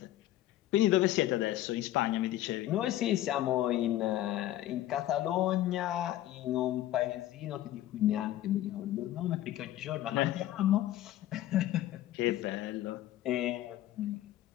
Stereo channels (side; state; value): right; quieter; 13.9 dB